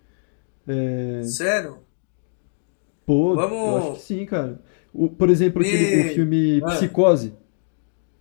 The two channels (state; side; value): silent; right; digital silence